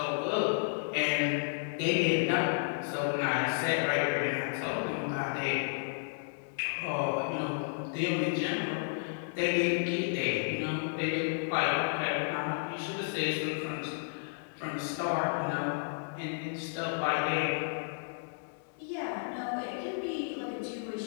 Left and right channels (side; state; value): right; silent; digital silence